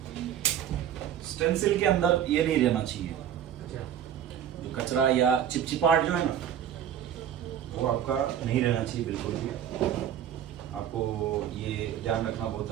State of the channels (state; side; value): quieter; left; 9.9 dB